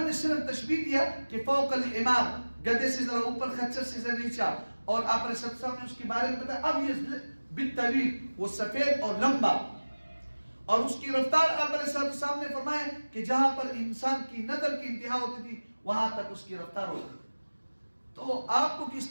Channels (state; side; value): inverted; both; correlation -1.00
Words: نے صرف تشبیہ دیا کہ فوق الحمار، گدھے سے ذرا اوپر، خچر سے ذرا نیچا، اور آپ علیہ السلام نے اس کے بارے میں بتایا اب یہ بالطویل، وہ سفید اور لمبا، اور اس کی رفتار آپ علیہ السلام نے فرمایا کہ جہاں پر انسان کی نظر کی انتہا ہوتی تھی وہاں تک اس کی رفتار ہوتی تھی۔ تو آپ کو